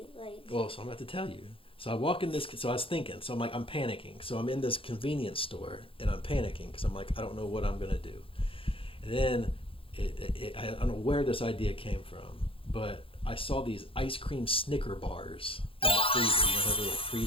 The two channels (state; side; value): late; right; 0.26 ms